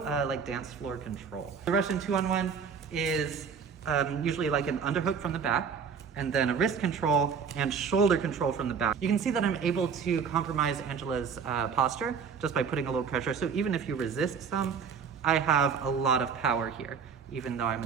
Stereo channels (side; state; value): left; quieter; 6.3 dB